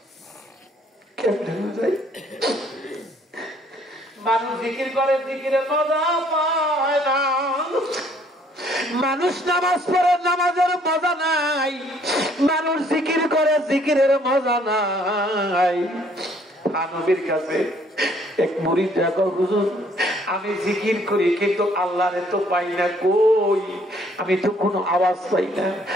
কেমনে বুঝাই? মানুষ জিকির করে, জিকিরের মজা পায় না। মানুষ নামাজ পড়ে, নামাজের মজা নাই। মানুষ জিকির করে, জিকিরের মজা নাই। নবীর কাছে এক মুরিদ দেখো, হুজুর আমি জিকির করি কিন্তু আল্লাহরে তো পাই না, কই আমি তো কোনো আওয়াজ পাই না,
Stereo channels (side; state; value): both; normal; correlation 0.63